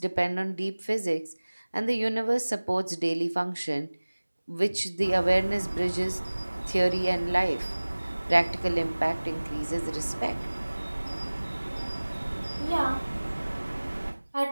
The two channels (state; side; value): inverted; both; correlation -1.00